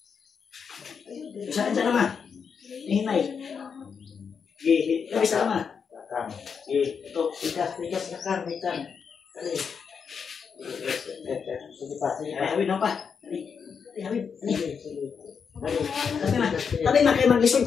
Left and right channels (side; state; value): right; quieter; 6.3 dB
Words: Saan siya naman? Hinay. Isa naman. Ito, tigas, nakang. Dali. Sige pa, hawid na pa. Hawid. Tabi na kayo mag-listen